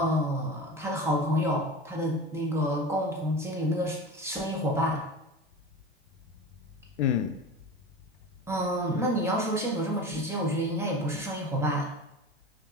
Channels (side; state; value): both; normal; correlation 0.32